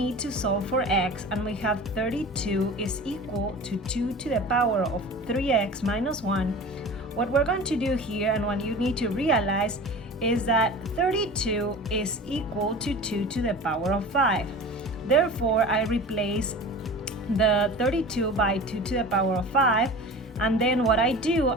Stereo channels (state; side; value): normal; both; correlation 0.36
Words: to solve for x and we have 32 is equal to 2 to the power of 3x minus 1, what we're going to do here and what you need to realize is that 32 is equal to 2 to the power of 5. Therefore, I replace the 32 by 2 to the power of 5, and then what I do,